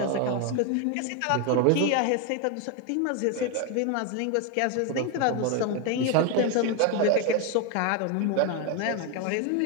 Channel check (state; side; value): different; both; correlation 0.01